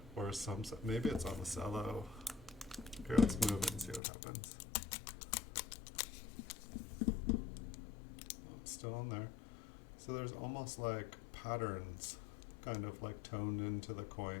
or some, maybe it's on the cello. Here, let's move it and see what happens. Oh, it's still on there. So there's almost like patterns kind of like toned into the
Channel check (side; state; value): right; drops out; at 4.0 s